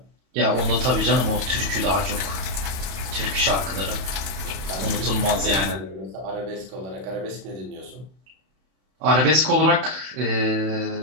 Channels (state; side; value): late; left; 31 ms